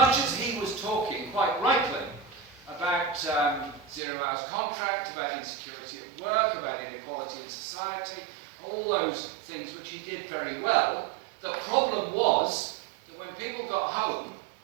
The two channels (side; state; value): left; drops out; at 4.0 s